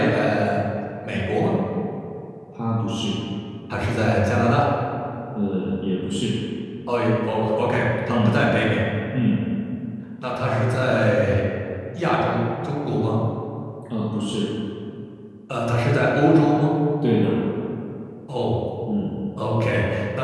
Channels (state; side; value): identical; both; correlation 1.00